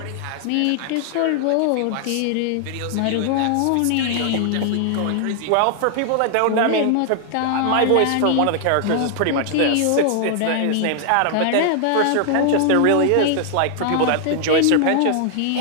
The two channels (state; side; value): different; both; correlation 0.00